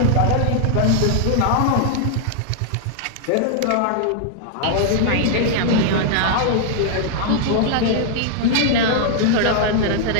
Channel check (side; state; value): both; different; correlation -0.01